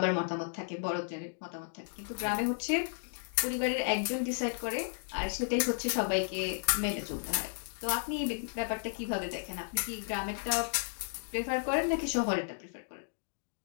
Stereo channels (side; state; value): right; silent; digital silence